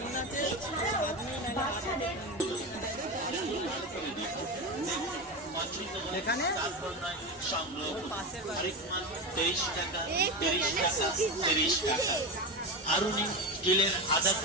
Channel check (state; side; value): normal; both; correlation 0.19